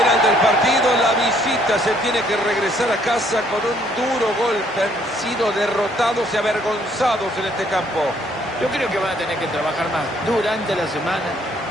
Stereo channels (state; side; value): normal; both; correlation 0.65